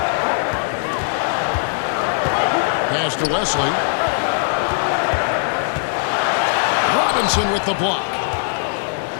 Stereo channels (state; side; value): silent; right; digital silence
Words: Pass to Wesley. Robinson with the block.